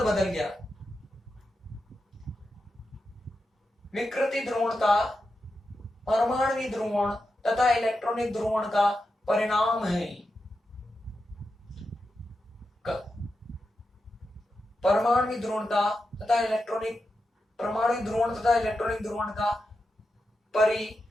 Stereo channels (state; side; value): normal; both; correlation 0.89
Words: गया। विकृति ध्रुवणता परमाणुवीय ध्रुवण तथा इलेक्ट्रॉनिक ध्रुवण का परिणाम है। परमाणुवीय ध्रुवणता तथा इलेक्ट्रॉनिक, परमाणु ध्रुवण तथा इलेक्ट्रॉनिक ध्रुवण का